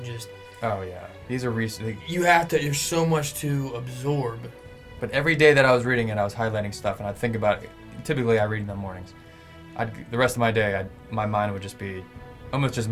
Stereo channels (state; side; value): identical; both; correlation 1.00